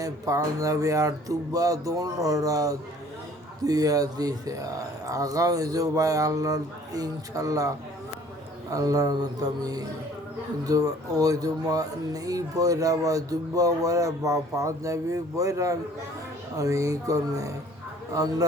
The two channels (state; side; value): normal; both; correlation 0.53